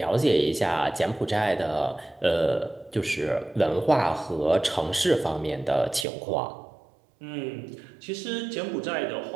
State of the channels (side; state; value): left; drops out; at 6.1 s